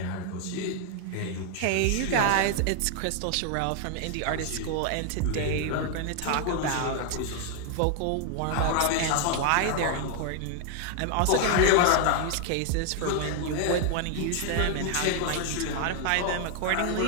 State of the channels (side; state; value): both; different; correlation 0.00